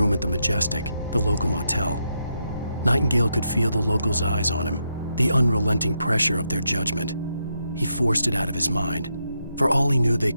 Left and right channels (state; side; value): inverted; both; correlation -0.82